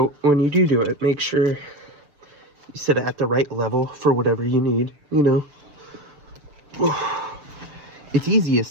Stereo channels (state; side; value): late; left; 7.0 ms